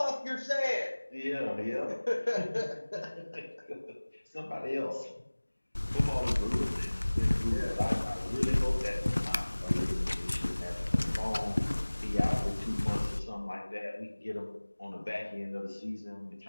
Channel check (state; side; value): inverted; both; correlation -1.00